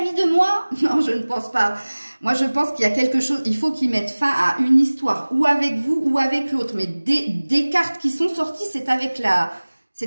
de moi? Non, je ne pense pas. Moi, je pense qu'il y a quelque chose, il faut qu'il mette fin à une histoire, ou avec vous, ou avec l'autre. Mais des cartes qui sont sorties, c'est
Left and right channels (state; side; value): inverted; both; correlation -1.00